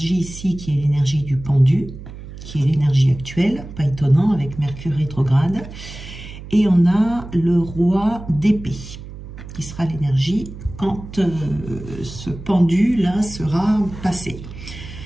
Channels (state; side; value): noise; right; hum, 13 dB below the sound